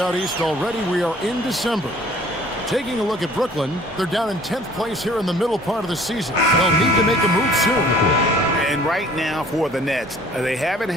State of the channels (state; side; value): normal; both; correlation 0.53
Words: east already. We are in December. Taking a look at Brooklyn, they're down in 10th place here in the middle part of the season. They'll need to make a move soon. And right now for the Nets, they haven't